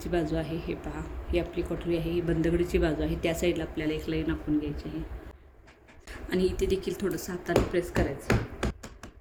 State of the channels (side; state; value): both; identical; correlation 1.00